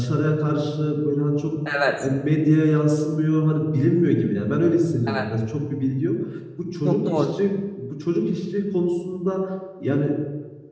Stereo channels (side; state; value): both; identical; correlation 1.00